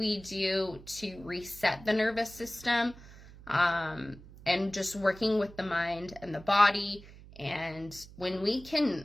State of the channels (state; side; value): noise; right; hum, 19 dB below the sound